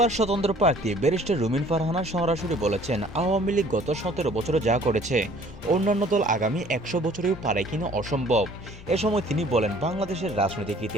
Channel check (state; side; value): normal; both; correlation 0.54